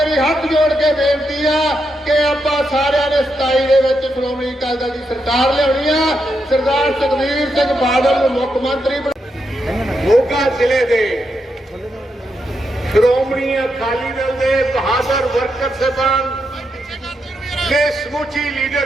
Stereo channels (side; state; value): both; normal; correlation 0.83